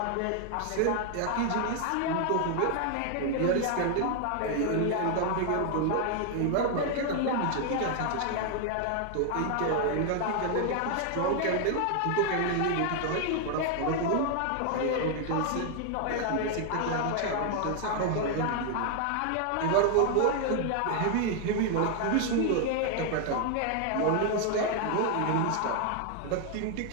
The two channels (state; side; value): different; both; correlation 0.00